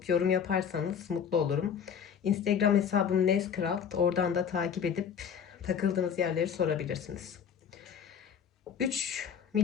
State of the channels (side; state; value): right; quieter; 7.6 dB